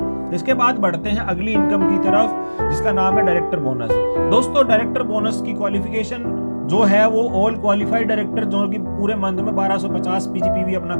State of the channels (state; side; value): inverted; both; correlation -1.00